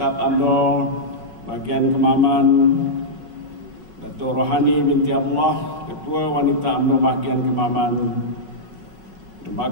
UMNO Bahagian Kemaman, Datuk Rohani binti Allah, Ketua Wanita UMNO Bahagian Kemaman, yang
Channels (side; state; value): left; late; 5.4 ms